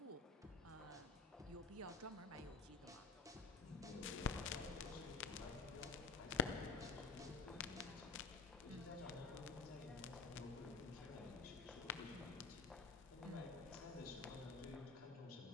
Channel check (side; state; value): right; quieter; 4.7 dB